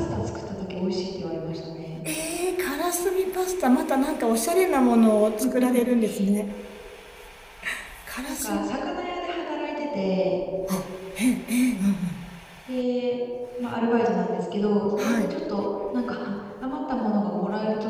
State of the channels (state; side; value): identical; both; correlation 1.00